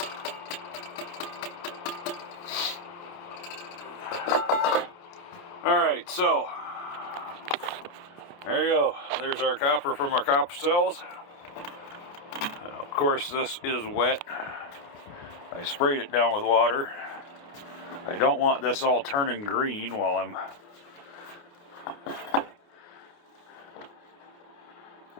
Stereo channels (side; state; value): right; late; 29 ms